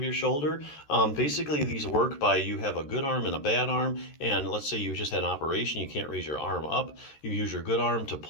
your shoulder. Basically, these work by you have a good arm and a bad arm, and let's say you just had an operation, you can't raise your arm up. You use your good arm to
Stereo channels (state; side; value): late; right; 13 ms